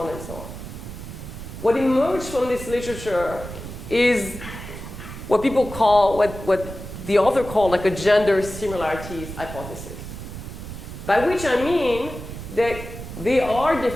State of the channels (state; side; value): noise; right; rumble, 10 dB below the sound